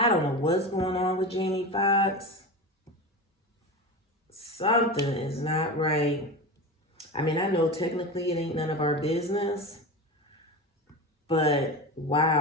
don't know what's going on with Jamie Foxx. Something is not right. I mean, I know technically it ain't none of our business, but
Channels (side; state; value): both; normal; correlation 0.25